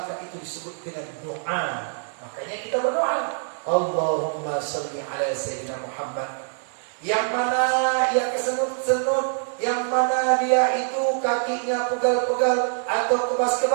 itu disebut dengan doa. Makanya kita berdoa, Allahumma salli ala Sayyidina Muhammad. Yang mana yang kesenut-senut, yang mana dia itu kakinya pegal-pegal atau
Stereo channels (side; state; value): left; silent; digital silence